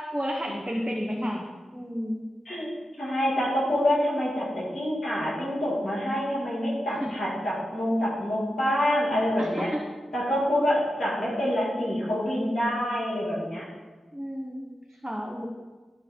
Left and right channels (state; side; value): normal; both; correlation 0.89